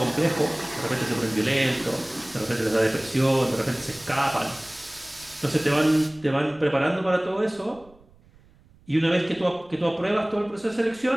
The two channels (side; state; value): right; noise; rumble, 28 dB below the sound